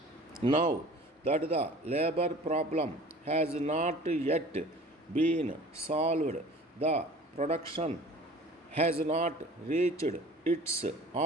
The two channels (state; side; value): normal; both; correlation 0.45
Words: Now that the labor problem has not yet been solved, the production has not reached its